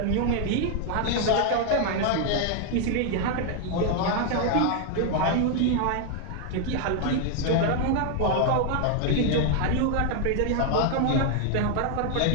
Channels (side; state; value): both; different; correlation 0.00